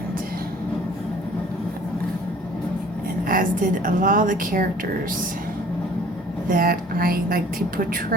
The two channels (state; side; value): normal; both; correlation 0.51